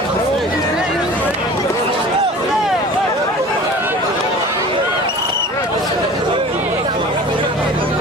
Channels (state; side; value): normal; both; correlation 0.41